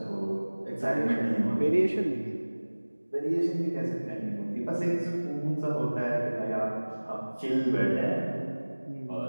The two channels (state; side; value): inverted; both; correlation -1.00